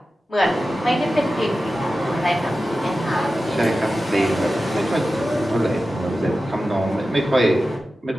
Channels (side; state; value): both; normal; correlation 0.94